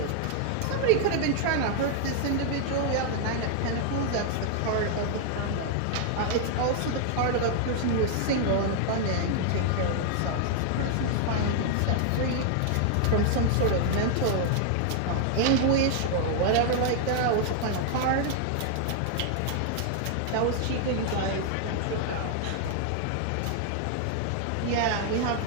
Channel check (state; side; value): different; both; correlation 0.00